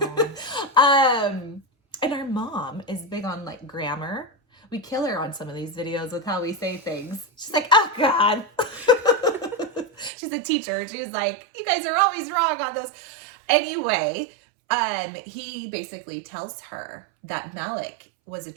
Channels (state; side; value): drops out; left; at 10.1 s